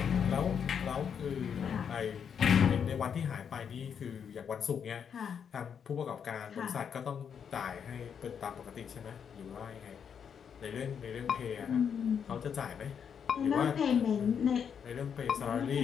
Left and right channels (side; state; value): right; quieter; 7.4 dB